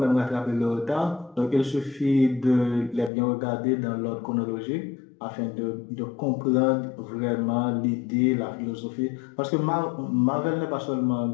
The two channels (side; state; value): right; drops out; at 3.1 s